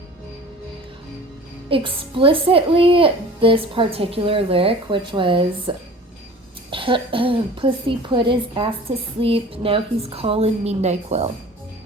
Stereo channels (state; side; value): normal; both; correlation 0.43